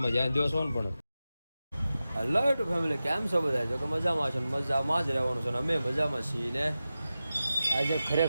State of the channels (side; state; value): both; inverted; correlation -0.94